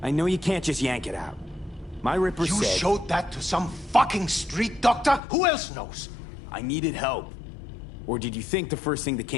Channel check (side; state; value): right; drops out; at 5.2 s